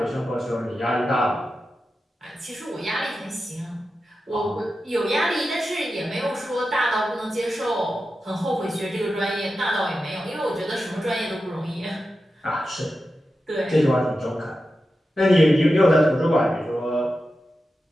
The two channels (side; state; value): both; normal; correlation 0.91